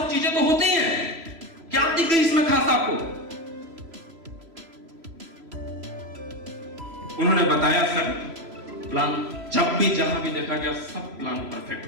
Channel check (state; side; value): late; left; 3.0 ms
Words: चीजें तो होती हैं, क्या दिख गई इसमें खास आपको? उन्होंने बताया सर प्लान जब भी जहां भी देखा गया सब प्लान परफेक्ट